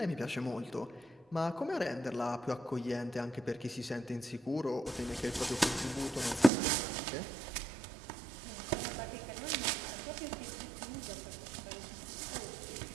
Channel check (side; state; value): left; drops out; at 6.5 s